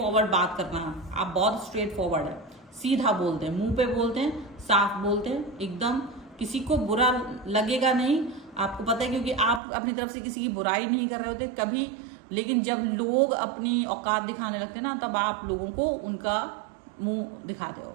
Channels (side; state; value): left; drops out; at 9.6 s